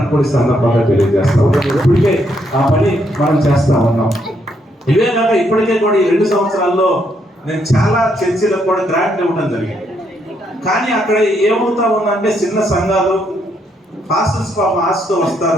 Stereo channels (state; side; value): normal; both; correlation 0.75